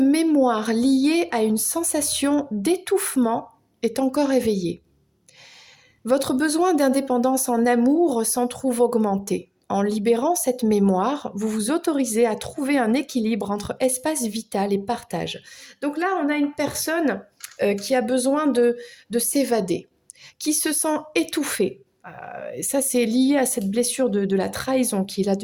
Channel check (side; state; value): both; identical; correlation 1.00